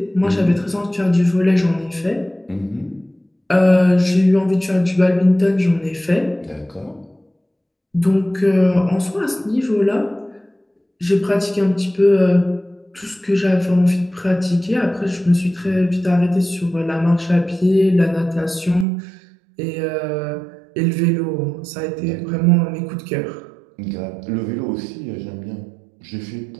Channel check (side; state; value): left; drops out; at 18.9 s